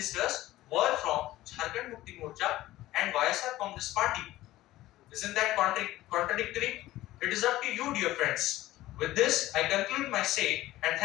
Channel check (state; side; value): quieter; right; 16.1 dB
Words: were from Jharkhand Mukti Morcha and YSR Congress Party. Isn't that contradictory? It is up to you, dear friends. With this, I conclude my say and